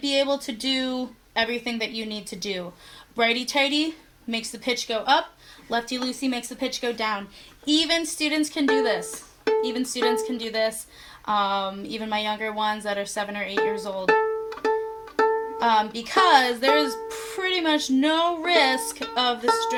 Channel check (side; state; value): both; identical; correlation 1.00